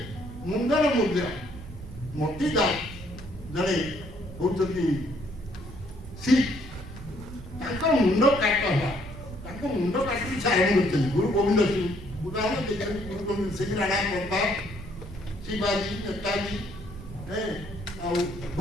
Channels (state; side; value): noise; right; rumble, 13 dB below the sound